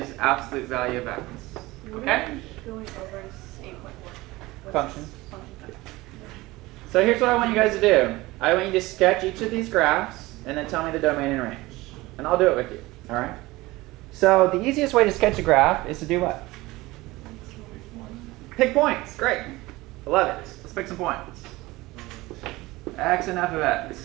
absolute value of x. Okay? Going over 8.1. Function. So here's what I want you guys to do. I want you to sketch each of these graphs and then tell me the domain and range. And I'll do it with you. All right? So the easiest way to sketch a graph is to do what? Pick points. Great. I love it. Let's pick some points. X and f of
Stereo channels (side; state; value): left; quieter; 20.1 dB